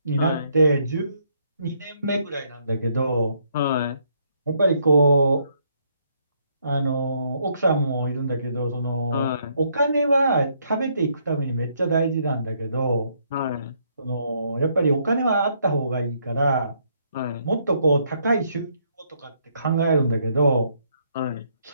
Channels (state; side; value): inverted; both; correlation -0.71